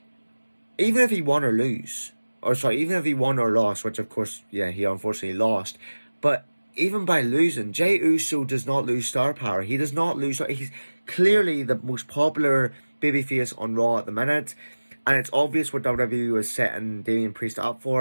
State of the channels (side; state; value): both; inverted; correlation -1.00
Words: Even if he won or even if he won or lost, which of course, yeah, he unfortunately lost, but even by losing, Jey Uso does not lose star power. He does not lose. He's clearly the most popular babyface on Raw at the minute, and it's obvious what WWE was setting Damian Priest up